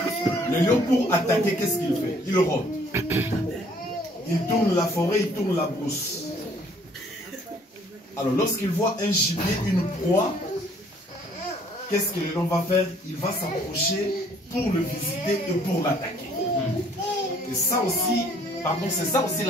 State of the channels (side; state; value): both; normal; correlation 0.60